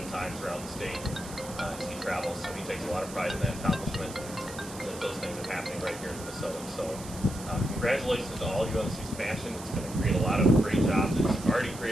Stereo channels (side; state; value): right; noise; hiss, 14 dB below the sound